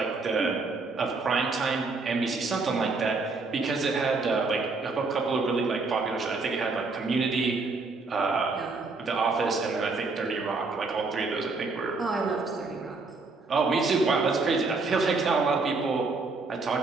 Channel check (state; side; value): quieter; left; 3.9 dB